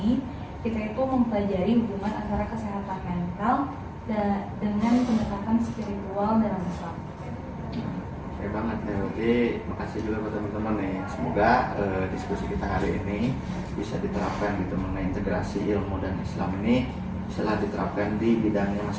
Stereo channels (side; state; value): both; identical; correlation 1.00